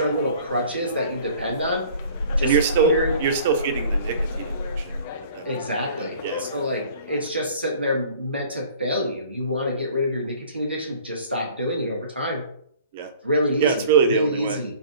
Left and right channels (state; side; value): inverted; both; correlation -0.48